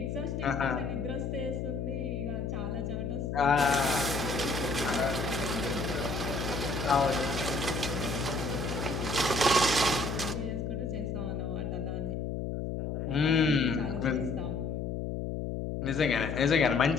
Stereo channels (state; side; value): noise; left; hum, 3 dB below the sound